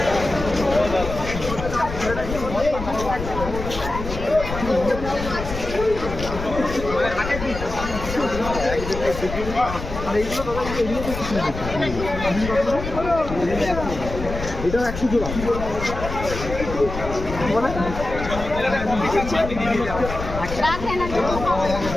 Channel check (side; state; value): left; noise; rumble, 7 dB below the sound